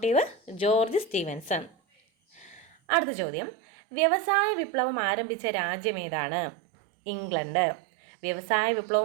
George Stephenson. അടുത്ത ചോദ്യം, വ്യവസായ വിപ്ലവം ആരംഭിച്ച രാജ്യം ഏതാണ്? ഇംഗ്ലണ്ട്. വ്യവസായ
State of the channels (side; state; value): left; drops out; at 2.8 s